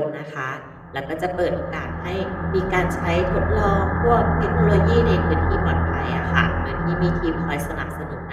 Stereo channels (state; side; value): identical; both; correlation 1.00